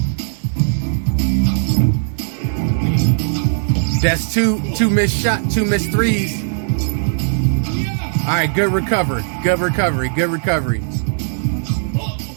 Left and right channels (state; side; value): silent; left; digital silence